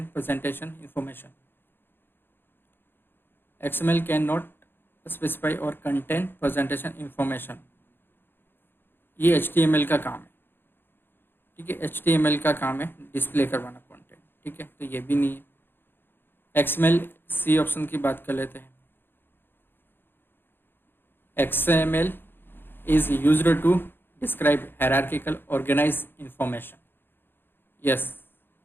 presentation information, XML can not specify और कंटेन प्रेजेंटेशन इंफॉर्मेशन, ये HTML का काम है, ठीक है, HTML का काम है डिस्प्ले करवाना कंटेंट, ठीक है, तो ये भी नहीं है। XML, सी ऑप्शन की बात कर लेते हैं, XML is used to describe hierarchical organised information, yes,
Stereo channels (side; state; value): right; late; 0.10 ms